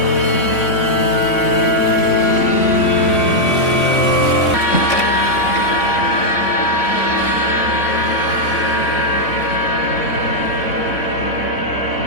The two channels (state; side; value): late; right; 3.6 ms